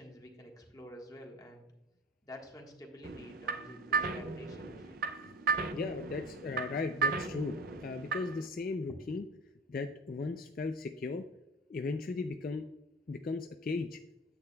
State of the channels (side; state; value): both; normal; correlation 0.38